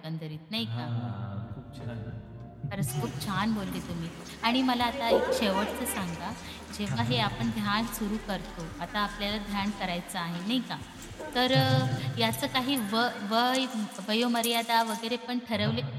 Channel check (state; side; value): identical; both; correlation 1.00